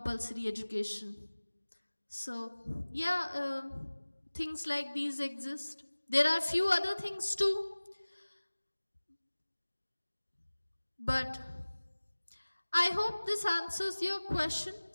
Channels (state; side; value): inverted; both; correlation -1.00